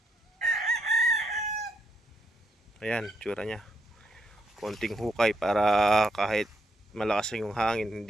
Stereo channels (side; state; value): both; normal; correlation 0.77